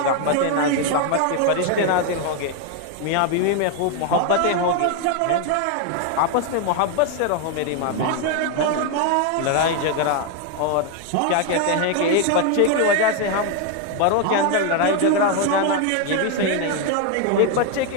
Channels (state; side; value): different; both; correlation 0.01